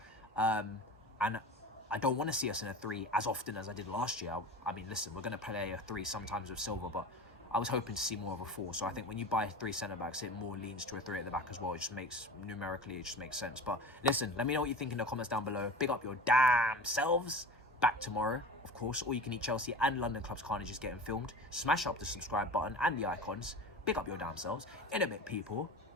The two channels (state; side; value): normal; both; correlation 0.34